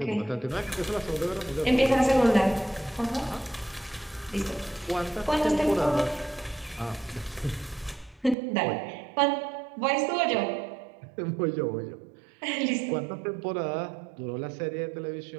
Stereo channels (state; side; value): drops out; left; at 8.3 s